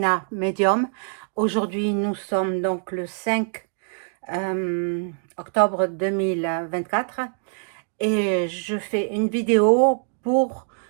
Medium. Aujourd'hui, nous sommes donc le 5 octobre 2024 et je fais une vidéo pour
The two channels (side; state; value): left; silent; digital silence